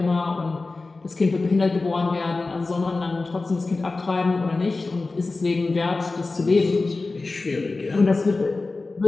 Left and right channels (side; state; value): right; quieter; 3.6 dB